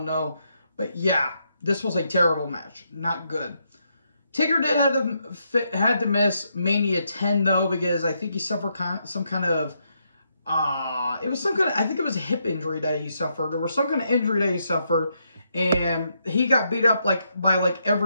to know. But yeah, this was a terrible match. Not good. Taker did had to miss Mania 10 though, because I think he suffered some kind of I think it was a hip injury that he suffered, or some kind of injury that he suffered, and he got beat up by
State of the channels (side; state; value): both; inverted; correlation -0.78